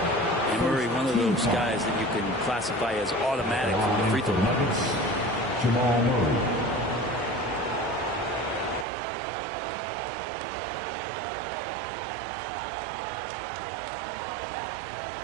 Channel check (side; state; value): left; drops out; at 8.8 s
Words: Murray, one of those guys that you can classify as automatic from the free throw line. Jamal Murray.